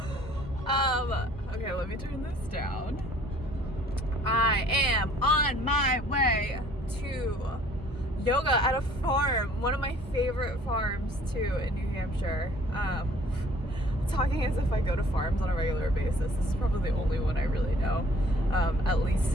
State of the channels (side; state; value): both; normal; correlation 0.55